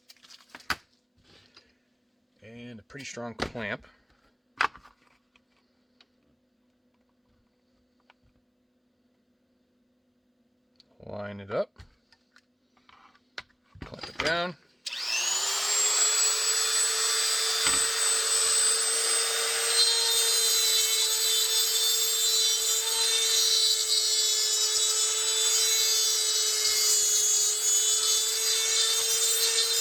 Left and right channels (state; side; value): identical; both; correlation 1.00